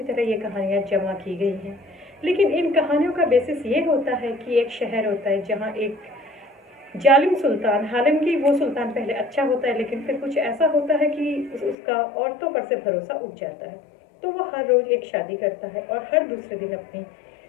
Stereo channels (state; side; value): drops out; right; at 11.8 s